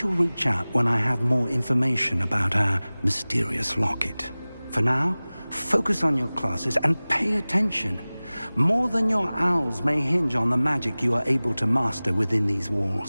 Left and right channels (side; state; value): both; inverted; correlation -0.99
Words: reach out when I have more information about our mysterious locket. For now, focus on your classes and pay attention. More than your owls may hinge on the magic you are able to master within these